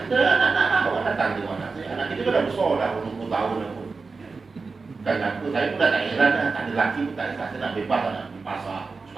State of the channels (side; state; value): left; quieter; 4.3 dB